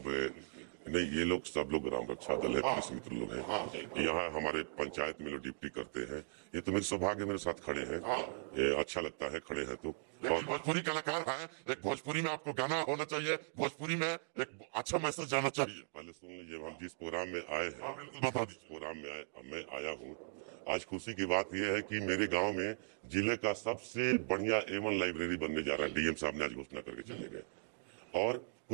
नहीं, ये लोग सब लोग ग्राम रक्षा दल है, पुलिस मित्र लोग हैं, यहाँ हमारे पंचायत में लोग ड्यूटी करते हैं। ये तो मेरे सौभाग्य मेरे साथ खड़े हैं, ये अच्छा लगता है खड़े हैं तो। और भोजपुरी कलाकार है, एक भोजपुरी में आपको गाना होना चाहिए, भोजपुरी में एक अच्छा मैसेज जाना चाहिए। पहले सुन लीजिए, हम जिस प्रोग्राम में आए हैं, बता दीजिए प्रोग्राम में मैं आया हूँ। आज खुशी की बात यह है कि मेरे गांव में जिले का सबसे बढ़िया A1 लाइब्रेरी बनने जा रहा है। डीएम साहब ने आज घोषणा करके चले गए। और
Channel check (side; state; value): left; silent; digital silence